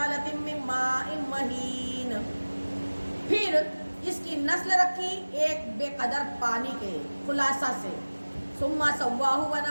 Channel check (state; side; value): inverted; both; correlation -1.00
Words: من ماء مہین، پھر اس کی نسل رکھی ایک بے قدر پانی کے خلاصہ سے۔ ثم سواہ